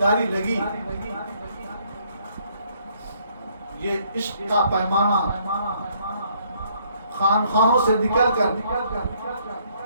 لگی، یہ عشق کا پیمانہ خانقاہوں سے نکل کر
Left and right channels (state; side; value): inverted; both; correlation -0.66